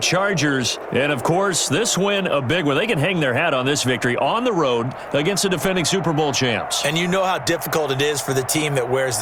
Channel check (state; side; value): identical; both; correlation 1.00